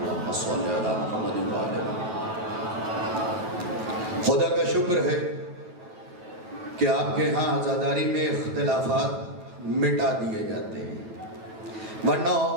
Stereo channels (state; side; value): late; left; 9.2 ms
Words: صلی علی محمد و آل محمد. خدا کا شکر ہے کہ آپ کے ہاں عزاداری میں اختلافات مٹا دیے جاتے ہیں، ورنہ